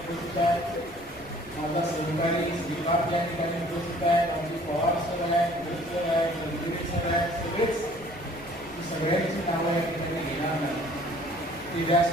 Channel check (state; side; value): noise; right; rumble, 22 dB below the sound